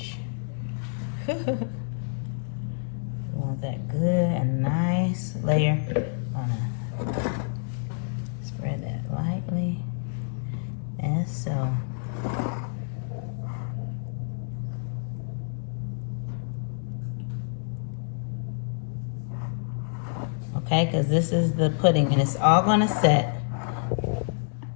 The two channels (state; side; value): silent; right; digital silence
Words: Want that good and nice layer on it. Spread that lightly, and so. Okay, because this is the pudding and it's all gonna set.